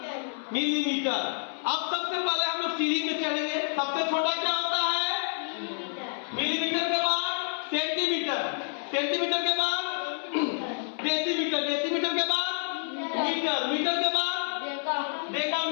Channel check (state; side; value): silent; right; 59 dB below the other